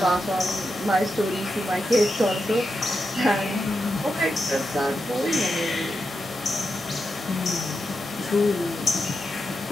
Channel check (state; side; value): normal; both; correlation 0.87